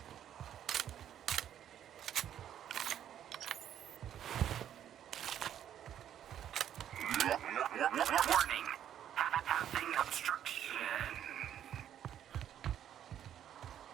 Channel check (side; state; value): left; quieter; 10.3 dB